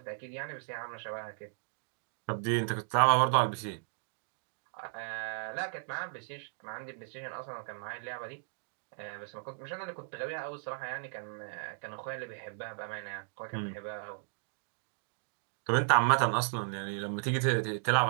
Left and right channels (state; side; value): silent; left; digital silence